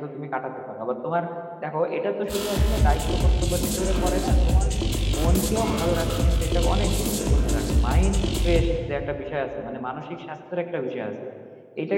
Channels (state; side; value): identical; both; correlation 1.00